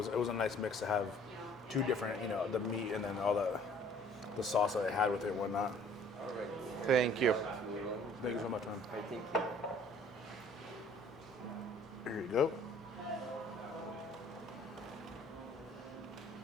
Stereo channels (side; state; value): both; normal; correlation 0.55